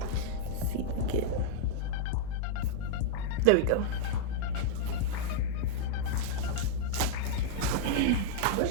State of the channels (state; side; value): different; both; correlation -0.02